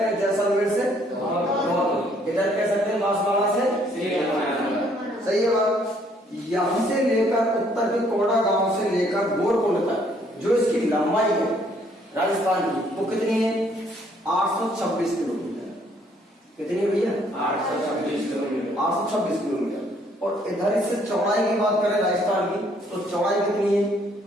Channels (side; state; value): both; normal; correlation 0.65